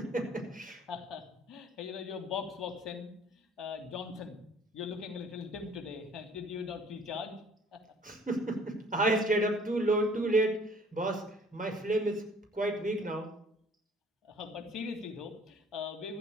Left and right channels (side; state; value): both; normal; correlation 0.55